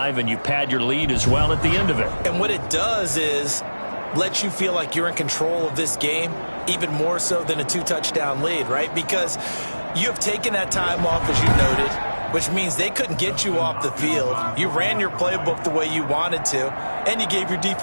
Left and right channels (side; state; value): both; inverted; correlation -1.00